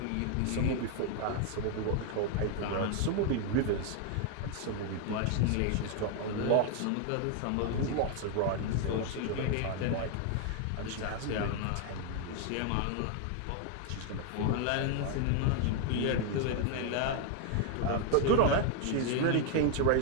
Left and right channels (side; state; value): both; different; correlation 0.00